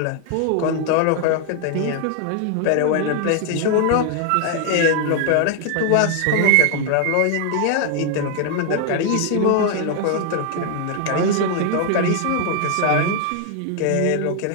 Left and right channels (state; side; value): different; both; correlation 0.00